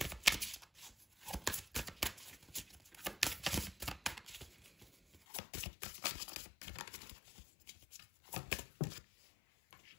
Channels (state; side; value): drops out; right; at 5.2 s